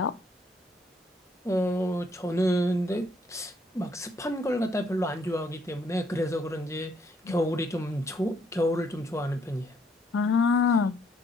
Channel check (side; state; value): both; normal; correlation 0.69